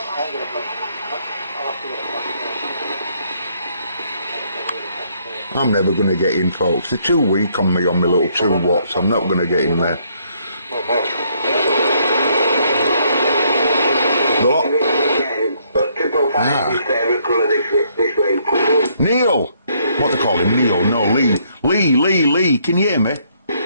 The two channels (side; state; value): both; inverted; correlation -0.69